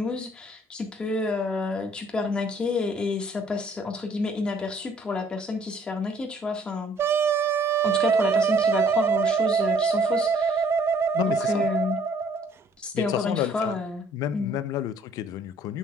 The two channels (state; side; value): normal; both; correlation 0.60